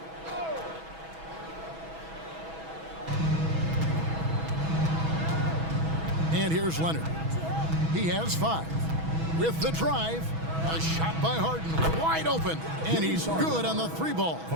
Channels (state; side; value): late; left; 6.1 ms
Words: And here's Leonard. He has 5. With the drive, a shot by Harden, wide open, and he's good on the 3 ball.